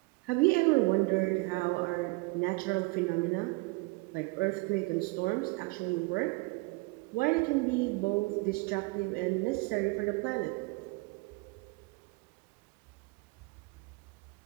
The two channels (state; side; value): quieter; left; 26.3 dB